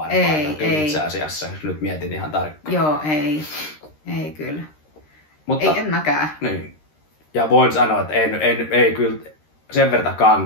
Ei. Itse asiassa, jos nyt mietin ihan tarkkaan. Joo, ei. Ei kyllä. Mutta, ei, en mäkään. Niin. Ja voin sanoa, että ei kyllä sen verran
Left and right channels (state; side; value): late; right; 13 ms